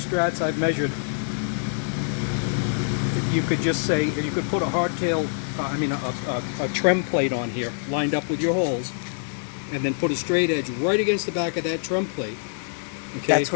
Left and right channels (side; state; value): right; silent; 62 dB below the other